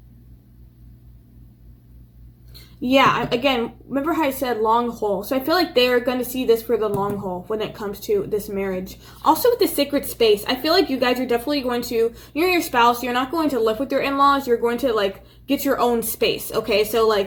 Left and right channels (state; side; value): identical; both; correlation 1.00